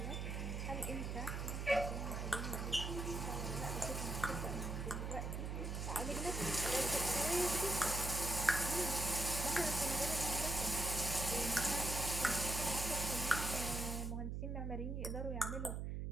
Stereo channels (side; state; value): right; noise; hum, 3 dB below the sound